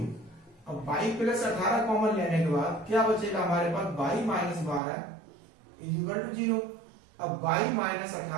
अब बाई प्लस 18 कॉमन लेने के बाद क्या बचेगा हमारे पास बाई माइनस 12 इक्वल टू 0। अब बाई माइनस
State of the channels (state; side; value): drops out; left; at 4.8 s